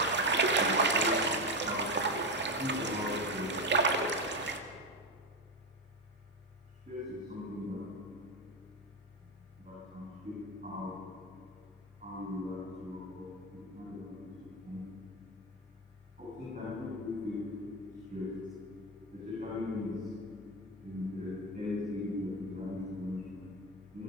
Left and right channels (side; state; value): both; normal; correlation 0.13